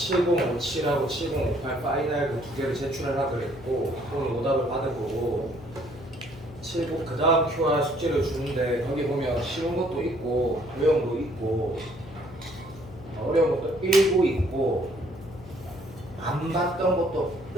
7058 파이널 그 두 개를 제출하라 그랬고 오늘 오답을 받아보고 70 그 다음 QR 숙제를 주는데 거기 보면 쉬운 것도 있고 어려운 것도 있고 어려운 것도 일부 있고 안 봤던 것도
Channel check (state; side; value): noise; left; hum, 17 dB below the sound